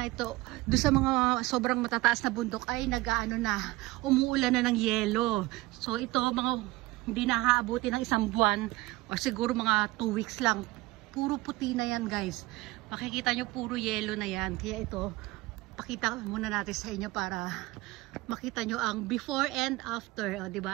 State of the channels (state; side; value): quieter; left; 20.1 dB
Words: Ito, doon sa mga sobrang matataas na bundok ay nag-ano na, umuulan na ng yelo. So ito, mga hindi nakaabuti ng isang buwan o siguro mga 2 weeks lang. Puro puti na yan guys. Makikita nyo puro yelo na yan. Kaya ito, pakita muna natin sa inyo para makita nyo ang before and after, o